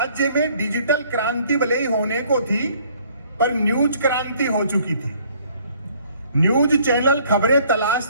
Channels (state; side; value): inverted; both; correlation -0.60